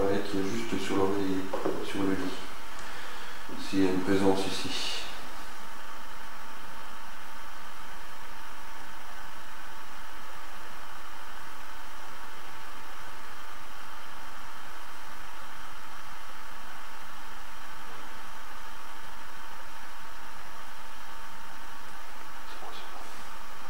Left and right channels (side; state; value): both; identical; correlation 1.00